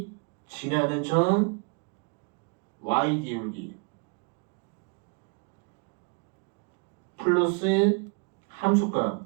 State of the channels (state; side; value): quieter; left; 34.5 dB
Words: 지나는 점 y 기울기 플러스 함수값